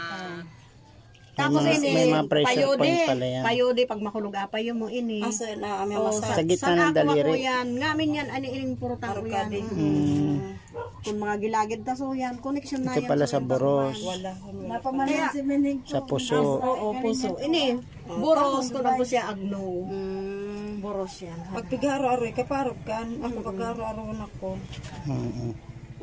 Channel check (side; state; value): both; identical; correlation 1.00